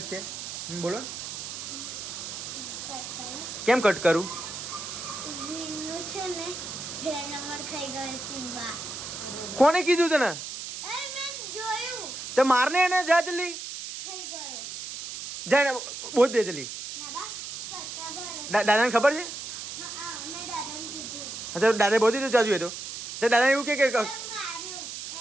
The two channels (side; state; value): right; noise; hiss, 8 dB below the sound